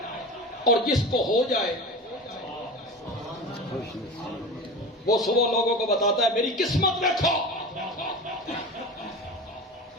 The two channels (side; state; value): both; normal; correlation 0.31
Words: اور جس کو ہو جائے وہ صبح لوگوں کو بتاتا ہے میری قسمت دیکھو،